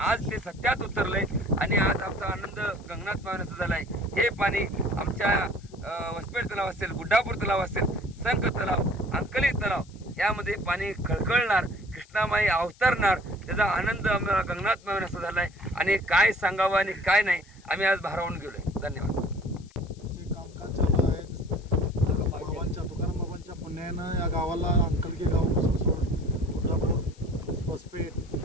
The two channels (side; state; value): left; noise; hiss, 27 dB below the sound